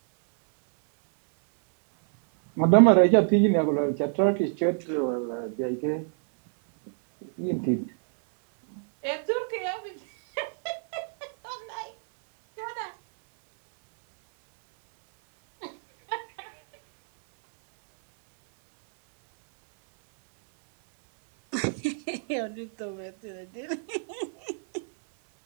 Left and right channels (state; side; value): silent; left; 61 dB below the other